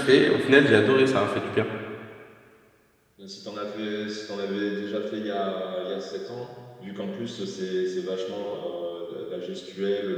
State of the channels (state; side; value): identical; both; correlation 1.00